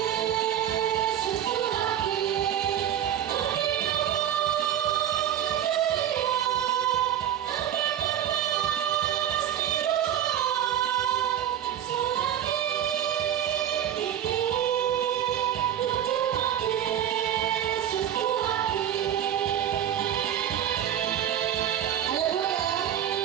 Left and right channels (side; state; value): left; quieter; 10.5 dB